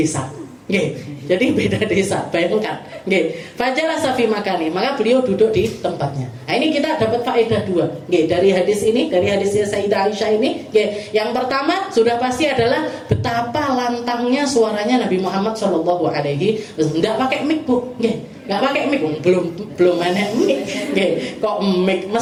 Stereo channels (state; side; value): identical; both; correlation 1.00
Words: Jadi beda desa, bayangkan. Fajalah safi makani, maka beliau duduk di tempatnya. Nah, ini kita dapat faedah dua. Dari hadis ini, dari hadisnya Sayyidah Aisyah ini. Yang pertama sudah pasti adalah betapa lantangnya suaranya Nabi Muhammad Shallallahu Alaihi Wasallam. Tidak pakai mic, Bu. Nggak pakai mic, belum enak mic. Kok mic